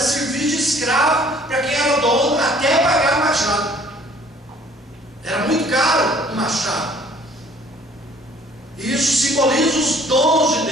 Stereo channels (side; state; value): both; normal; correlation 0.56